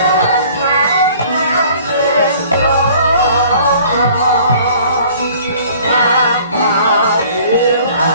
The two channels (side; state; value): both; inverted; correlation -0.53